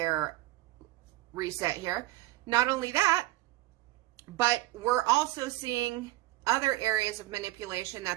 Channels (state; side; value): quieter; left; 17.8 dB